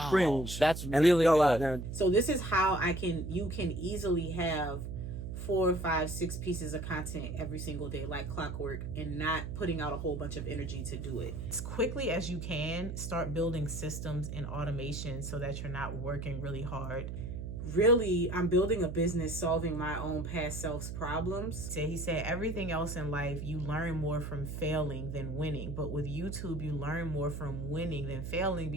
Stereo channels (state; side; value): noise; right; hum, 6 dB below the sound